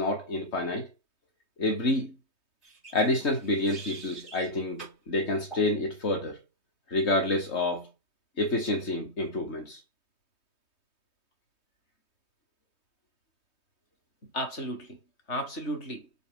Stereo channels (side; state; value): right; late; 3.2 ms